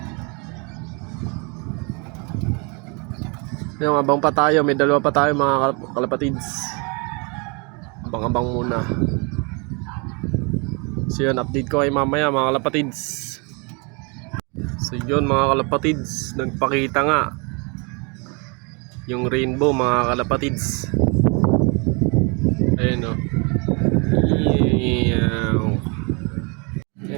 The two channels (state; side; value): quieter; left; 31.9 dB